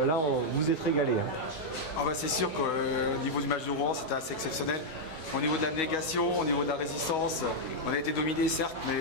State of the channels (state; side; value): late; right; 13 ms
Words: là, vous êtes régalé. Hein. Ah bah c'est sûr qu'au niveau du match de Rouen, c'était assez exceptionnel. Au niveau de l'abnégation, au niveau de la résistance, on a été dominé certes,